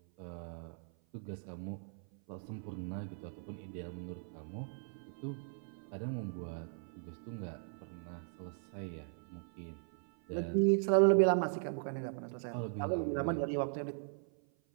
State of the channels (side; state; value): left; silent; 52 dB below the other